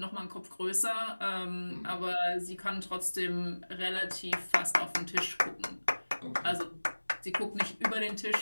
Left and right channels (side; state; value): both; inverted; correlation -1.00